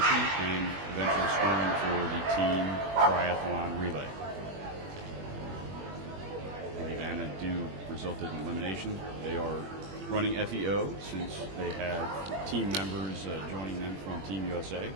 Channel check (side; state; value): left; late; 21 ms